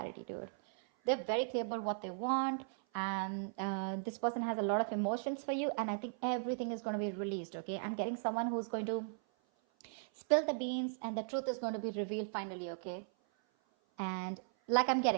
dude. They're very clear about what they want, and this person has a lot of emotions for you, and I think everything is going to be released, okay? I'm getting someone who's going to spill the beans, and the truth is going to be revealed finally, okay? And like I'm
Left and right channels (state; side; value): silent; left; 53 dB below the other